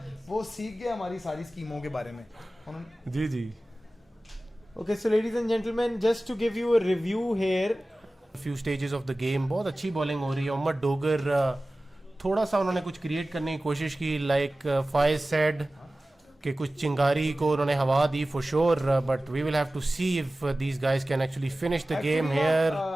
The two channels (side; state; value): both; normal; correlation 0.96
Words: वो सीख गया हमारी सारी स्कीमों के बारे में. जी जी. Okay, so ladies and gentlemen, just to give you a review here. Few stages of the game बहुत अच्छी बॉलिंग हो रही है. मोहम्मद डोगर थोड़ा सा उन्होंने कुछ क्रिएट करने की कोशिश की, लाइक फाइज सेड कि कुछ चिंगारी को उन्होंने हवा दी for sure, but we will have to see if these guys can actually finish the game here.